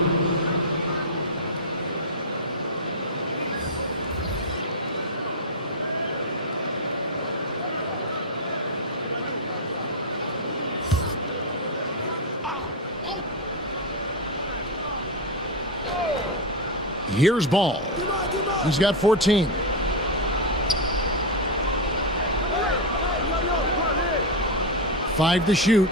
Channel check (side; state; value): both; normal; correlation 0.05